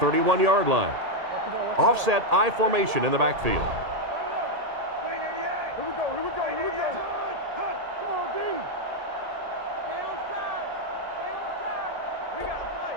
line. Offset I formation in the backfield. Here we go. Hunt. Come on, D. Stay on side.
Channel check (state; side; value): late; left; 1.7 ms